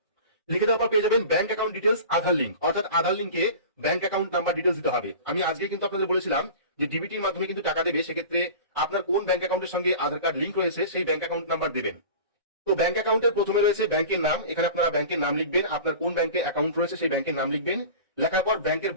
লিখে দেওয়ার পর পেয়ে যাবেন ব্যাংক অ্যাকাউন্ট ডিটেলস, আধার লিঙ্ক, অর্থাৎ আধার লিঙ্কে ব্যাংক অ্যাকাউন্ট নাম্বার ডিটেলস দিতে হবে। আমি আজকে কিন্তু আপনাদের বলেছিলাম যে ডিবিটির মাধ্যমে কিন্তু টাকা দেবে, সেক্ষেত্রে আপনার কোন ব্যাংক অ্যাকাউন্টের সঙ্গে আধার কার্ড লিঙ্ক রয়েছে সেই ব্যাংক অ্যাকাউন্ট নাম্বার দেবেন। তো ব্যাংক অ্যাকাউন্টের প্রথমে রয়েছে ব্যাংকের নাম, এখানে আপনারা ব্যাংকের নাম লিখবেন, আপনার কোন ব্যাংকে অ্যাকাউন্ট রয়েছে সেই ব্যাংকের নাম লিখবেন। লেখার পর ব্যাংকের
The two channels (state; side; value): inverted; both; correlation -0.37